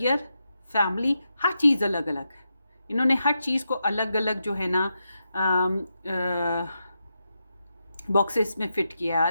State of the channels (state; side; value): inverted; both; correlation -0.86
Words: फैमिली, हर चीज़ अलग अलग है। इन्होंने हर चीज़ को अलग अलग जो है ना बॉक्सेस में फ़िट किया है,